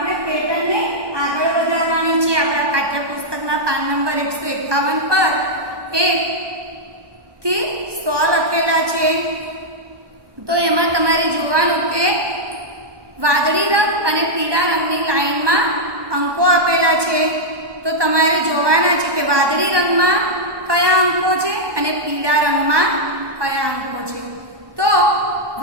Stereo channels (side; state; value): left; late; 1.2 ms